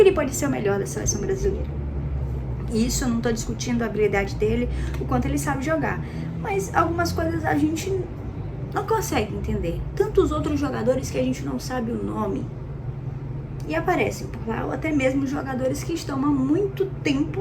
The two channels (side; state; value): both; identical; correlation 1.00